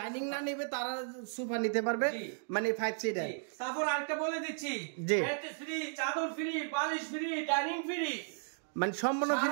না নেবে তারা সোফা নিতে পারবে, মানে 5 সিটার। তারপর আরেকটা বলে দিচ্ছি, বেড ফ্রি, চাদর ফ্রি, বালিশ ফ্রি, ডাইনিং ফ্রি, মানে সম্পূর্ণ ফ্রি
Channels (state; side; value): silent; left; digital silence